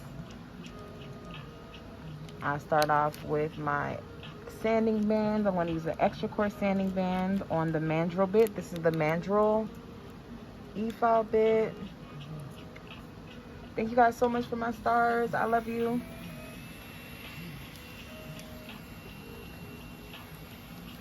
I start off with my sanding band. I'm going to use an extra coarse sanding band on the mandrel bit. This is the mandrel e-file bit. Thank you guys so much for my stars. I love you.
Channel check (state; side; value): identical; both; correlation 1.00